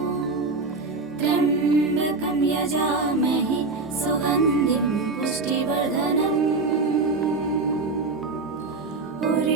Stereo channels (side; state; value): left; quieter; 3.7 dB